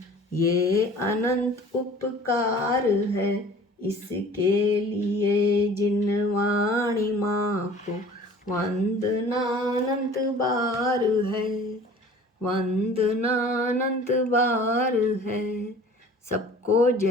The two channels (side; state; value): both; normal; correlation 0.47